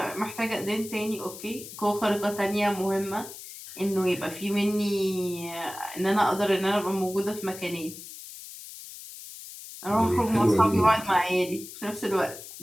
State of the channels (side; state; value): left; noise; hiss, 13 dB below the sound